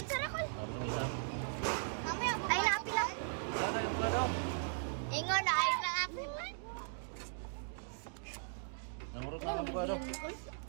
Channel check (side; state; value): left; silent; digital silence